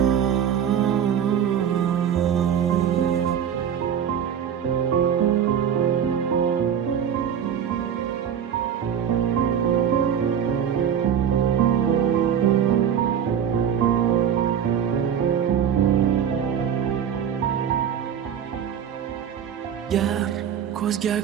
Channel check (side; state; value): left; quieter; 8.6 dB